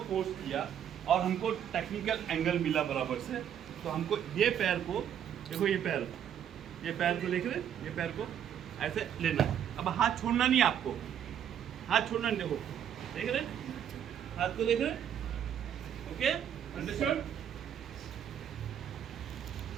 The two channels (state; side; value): quieter; left; 9.4 dB